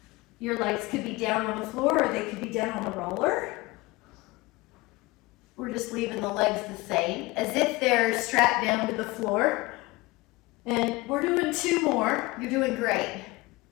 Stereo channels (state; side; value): quieter; right; 21.8 dB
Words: Your legs could be down on the floor or they could be down on the roller. We're just leaving the legs the same, as if they're strapped down to the floor. And we're doing 2 more. You're doing great.